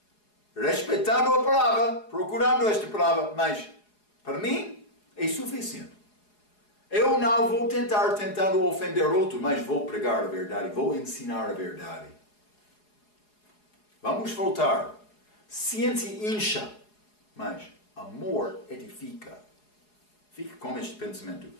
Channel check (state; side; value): late; right; 4.8 ms